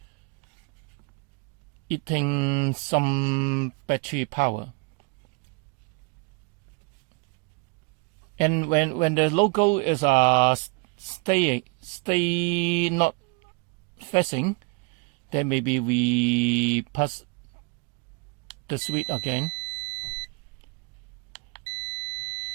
eating some battery power. And when the logo is stay not facing, then maybe we press the switch again.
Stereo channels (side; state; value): left; quieter; 31.5 dB